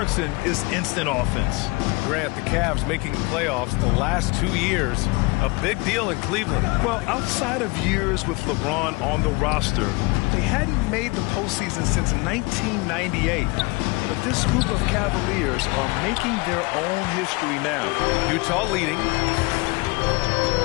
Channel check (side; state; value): right; quieter; 26.0 dB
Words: is instant offense. Grant, the Cavs making the playoffs the last 2 years. A big deal in Cleveland. Well, outside of years with LeBron on the roster, they hadn't made the postseason since 1998. But this group of Cavaliers are making their own history now. Utah leading.